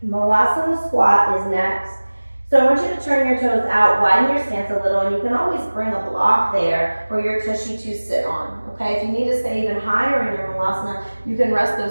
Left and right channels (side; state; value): both; inverted; correlation -1.00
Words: Malasana squat is next. So I want you to turn your toes out, widen your stance a little, and you can always bring a block there for your tushy to sit on, okay? If you need to stay even higher in your Malasana, you can rest